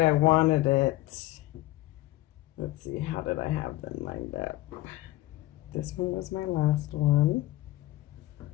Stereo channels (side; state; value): right; quieter; 17.0 dB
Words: I wanted it. Let's see, how did I have them lined up? This one was my last one.